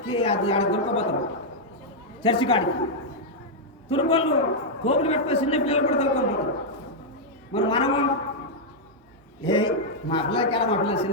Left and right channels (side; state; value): both; normal; correlation -0.04